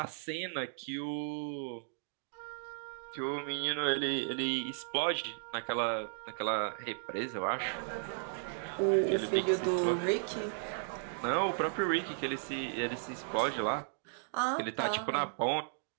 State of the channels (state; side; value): silent; left; digital silence